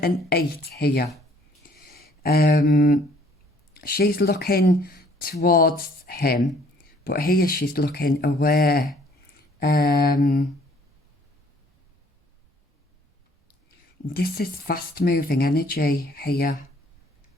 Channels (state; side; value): normal; both; correlation 0.59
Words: and 8 here. She's looking towards him, but here she's looking away. This is fast moving energy here.